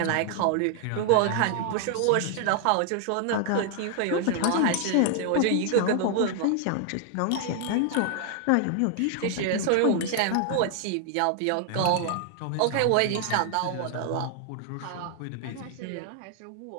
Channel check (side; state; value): both; different; correlation 0.00